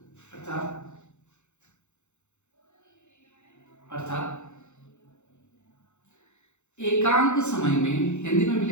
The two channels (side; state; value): right; late; 0.83 ms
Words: एकांक समय में, हिंदी में भी